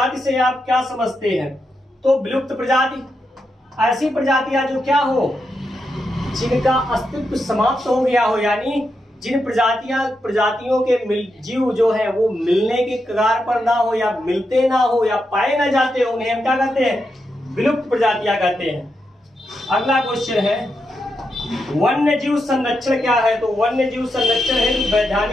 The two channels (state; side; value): normal; both; correlation 0.85